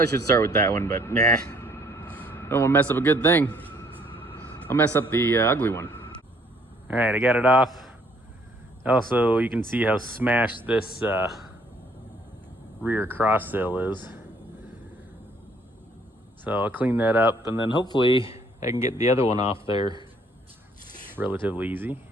should start with that one, but nah, Don't want to mess up a good thing. I'll mess up the ugly one. All right, I got it off. Also, you can see how smashed this rear cross sill is. So I'll clean that up, and then hopefully I can get the other one off there relatively easy.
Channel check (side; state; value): both; normal; correlation 0.63